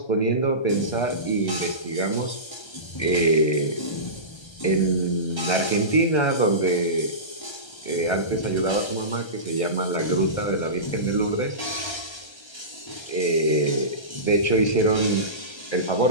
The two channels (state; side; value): late; right; 1.3 ms